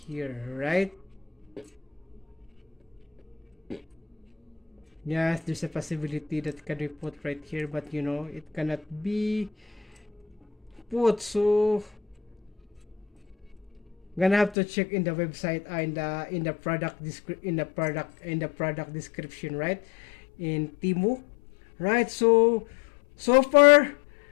right? Yes, there's a possibility that can be put right here, but it cannot be put. So gonna have to check in the website, in the product description, right? in Timu, right? So so far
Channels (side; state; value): right; drops out; at 14.6 s